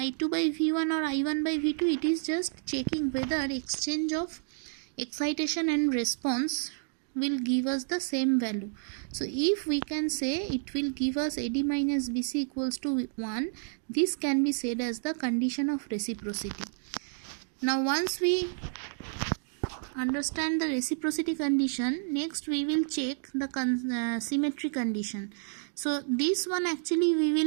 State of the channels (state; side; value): silent; left; digital silence